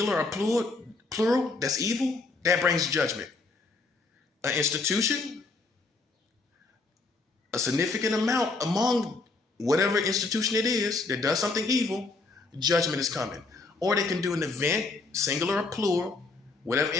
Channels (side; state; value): right; quieter; 3.7 dB